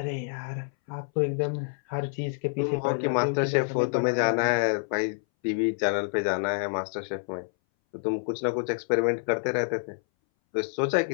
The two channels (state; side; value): silent; right; 60 dB below the other